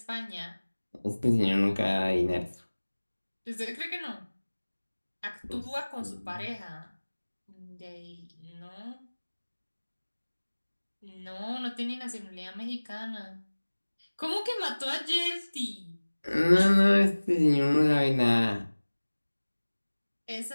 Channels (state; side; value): inverted; both; correlation -1.00